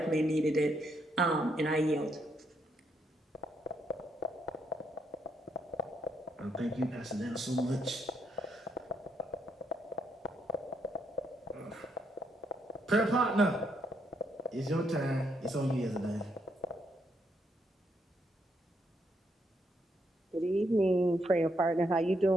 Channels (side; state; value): both; normal; correlation 0.76